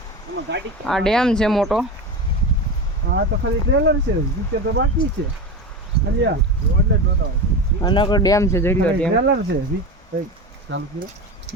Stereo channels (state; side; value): normal; both; correlation 0.24